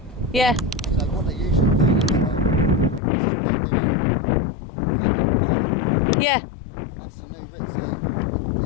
Yeah. So what they usually do is if they're doing Yeah. that's the new reeds. So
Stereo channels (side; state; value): right; drops out; at 3.0 s